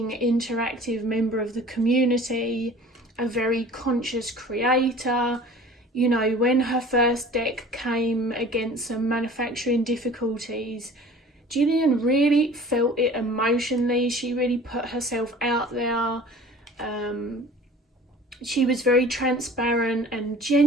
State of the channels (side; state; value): both; normal; correlation 0.45